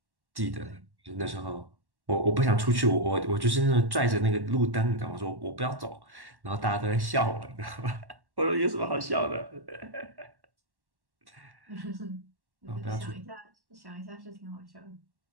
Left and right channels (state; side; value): late; left; 1.1 ms